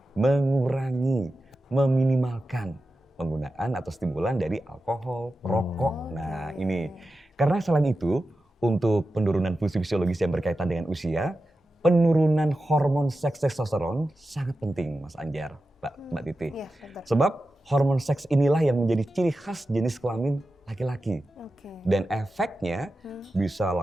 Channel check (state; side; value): normal; both; correlation 0.92